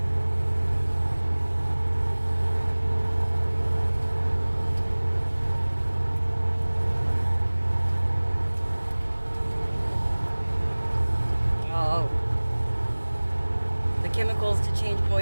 Chemicals to change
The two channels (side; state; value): both; inverted; correlation -1.00